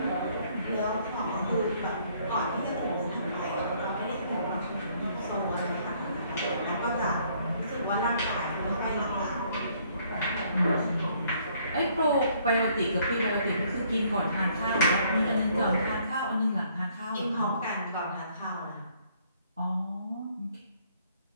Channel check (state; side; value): inverted; both; correlation -0.65